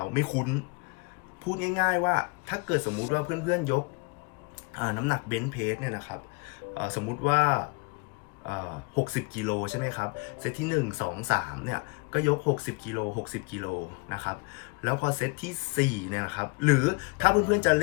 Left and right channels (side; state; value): right; quieter; 30.4 dB